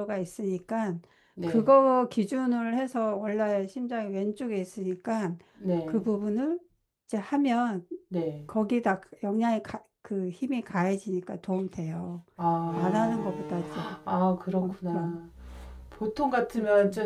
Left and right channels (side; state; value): both; identical; correlation 1.00